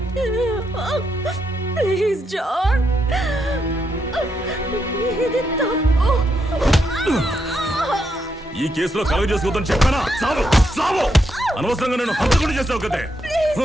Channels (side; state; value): both; normal; correlation 0.80